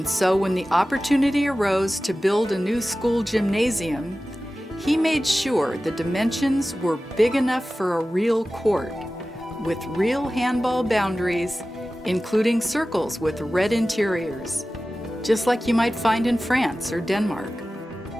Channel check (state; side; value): normal; both; correlation 0.96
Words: so when the opportunity arose to build a new school gymnasium, he made sure the dimensions were big enough for a real court, with real handball boundaries, including circles with red interiors, just like you might find in France or Denmark.